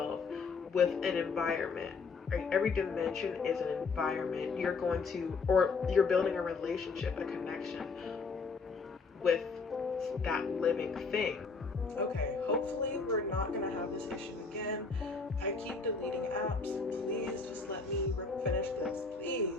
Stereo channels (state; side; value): quieter; right; 4.5 dB